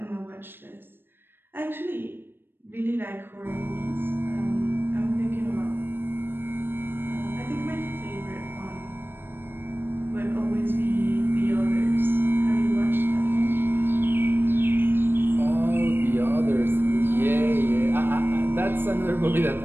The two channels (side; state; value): left; late; 0.10 ms